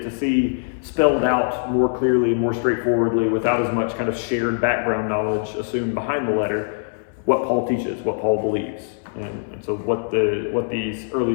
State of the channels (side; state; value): right; silent; 64 dB below the other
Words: to see spelled out more clearly, more straightforwardly, without as much kind of shared background knowledge assumed behind the letter, what Paul teaches, what Paul believes. And so what these early